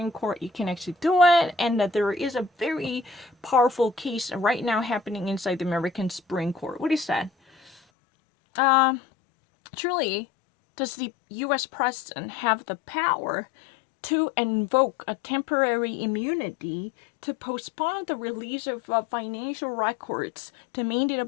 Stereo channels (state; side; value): drops out; right; at 7.8 s